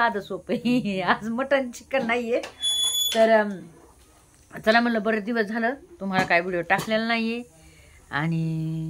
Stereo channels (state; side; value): identical; both; correlation 1.00